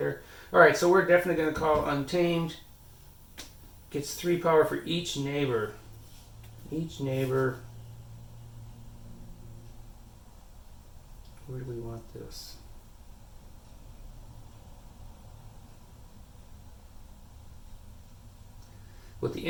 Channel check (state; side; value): identical; both; correlation 1.00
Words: Alright, so we're definitely going to call Untamed. Gets 3 power for each neighbor. Each neighbor. Where do we want this? With the